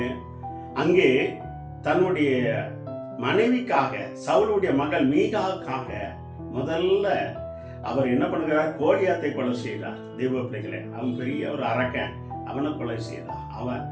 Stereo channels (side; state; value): both; identical; correlation 1.00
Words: அங்கே தன்னுடைய மனைவிக்காக, சவுலுடைய மகள் மீகாவுக்காக முதல்ல அவர் என்ன பண்ணுகிறார்? கோலியாத்தை கொலை செய்தார். தெய்வ பிள்ளைகளே, அவன் பெரிய ஒரு அரக்கன், அவனை கொலை செய்தார். அவன்